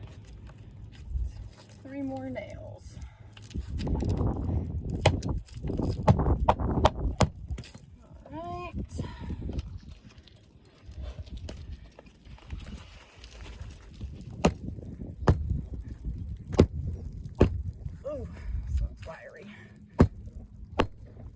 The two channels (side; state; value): both; identical; correlation 1.00